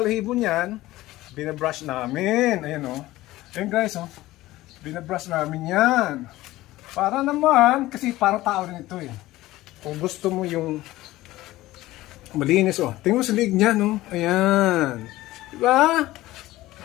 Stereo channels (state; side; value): quieter; right; 17.1 dB